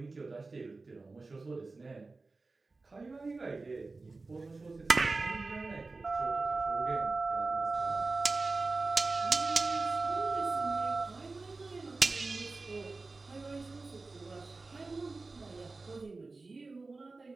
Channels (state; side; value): quieter; left; 3.7 dB